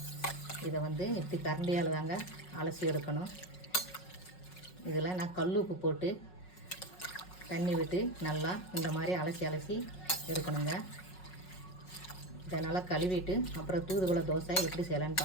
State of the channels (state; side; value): late; right; 5.4 ms